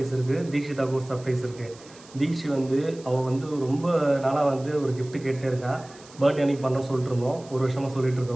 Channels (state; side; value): noise; right; hiss, 22 dB below the sound